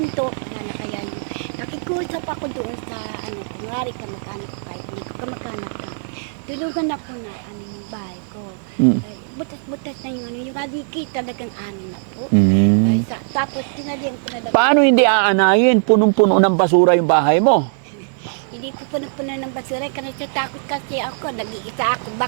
to, wala na kaya yung, nakikusap ako doon sa, ano, kunwari kamag-anak ko kahit hindi ko kamag-anak na. Tulugan ako na, ano, yung bahay ko. Mm. Ay, butas-butas na yung, ano, yung haligi talagang ano na po. Mm. Ay, tapos tinalihan ko na lang. Paano hindi aanayin? Punong-puno ng basura yung bahay mo. Hindi ko puno-puno ng basura kasi takot kasi ako, nag-iisa ako.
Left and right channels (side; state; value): left; silent; digital silence